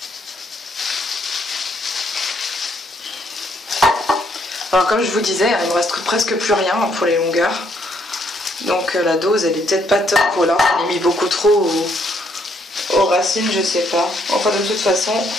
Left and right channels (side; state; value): both; normal; correlation 0.71